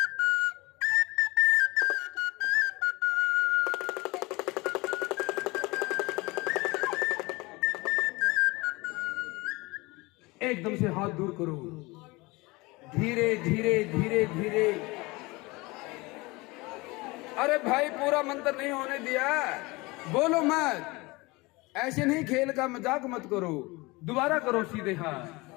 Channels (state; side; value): quieter; right; 23.6 dB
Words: एकदम से हाथ दूर करो, धीरे धीरे धीरे धीरे। अरे भाई, पूरा मंत्र नहीं होने दिया, बोलो मत। ऐसे नहीं, खेल का मजाक मत करो। दोबारा करो सीधे हाथ,